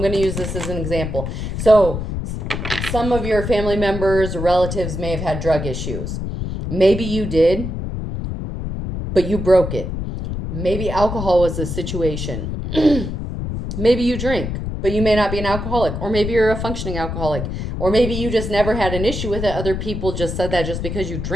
going to use this as an example. So some of your family members or relatives may have had drug issues. Maybe you did, but you broke it. Maybe alcohol was the situation. Maybe you drink, but you may not be an alcoholic. Or maybe you're a functioning alcoholic. Or maybe you just never had an issue with it. Other people just said that just because you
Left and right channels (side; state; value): left; noise; rumble, 4 dB below the sound